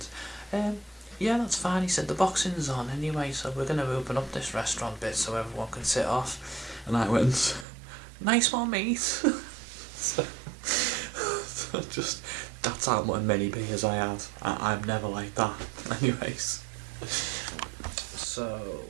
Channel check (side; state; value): left; drops out; at 7.7 s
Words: yeah, that's fine. He said, the boxing's on anyway, so we're going to open up this restaurant bit so everyone can sit off. And I went, nice one, mate. so just, that's how many beers I had. I'm never like that. Anyways. So,